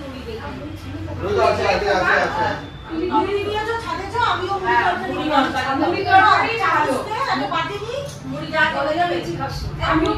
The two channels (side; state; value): both; identical; correlation 1.00